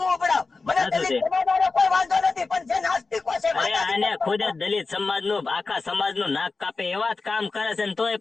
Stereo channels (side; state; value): right; quieter; 4.1 dB